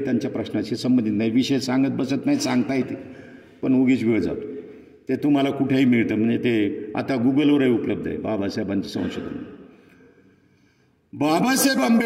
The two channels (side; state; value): both; identical; correlation 1.00